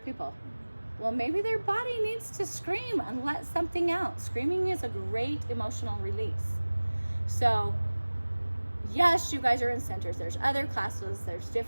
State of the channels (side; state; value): both; inverted; correlation -1.00